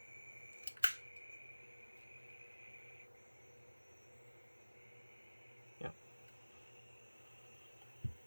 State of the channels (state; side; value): inverted; both; correlation -1.00